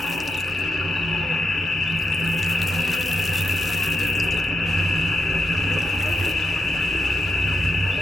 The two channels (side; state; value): both; normal; correlation 0.83